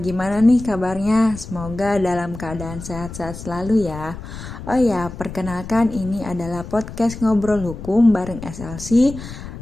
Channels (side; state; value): left; noise; rumble, 11 dB below the sound